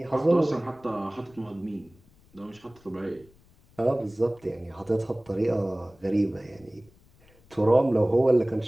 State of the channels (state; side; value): noise; left; rumble, 29 dB below the sound